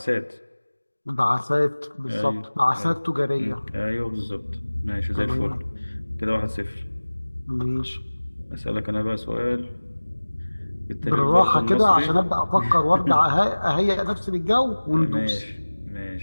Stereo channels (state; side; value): inverted; both; correlation -1.00